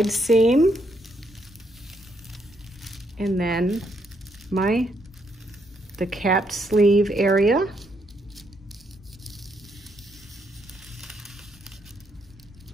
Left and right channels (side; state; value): both; normal; correlation 0.75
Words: seam, and then the capped sleeve area.